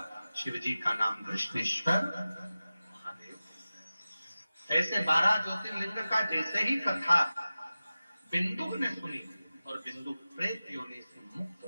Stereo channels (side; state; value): both; inverted; correlation -0.96